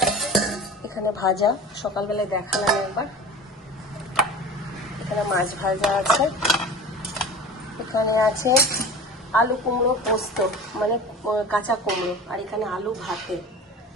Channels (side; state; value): both; normal; correlation 0.36